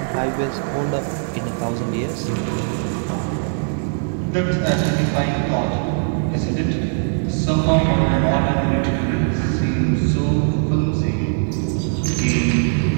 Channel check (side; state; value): left; silent; 66 dB below the other